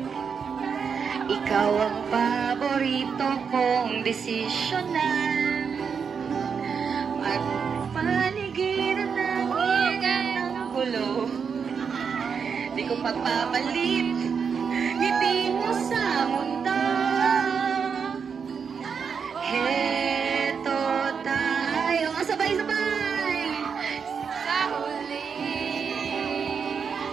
ikaw ang paborito kong desisyonan. At paligiran ng ingay ng gulo, di ko pagpapalit ngiti mo sa mundo. Heto tayo, sabay-sabay sa huli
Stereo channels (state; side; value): quieter; left; 6.3 dB